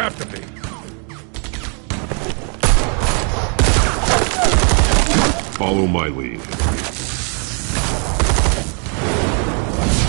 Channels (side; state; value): left; quieter; 38.9 dB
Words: to be. Follow my lead.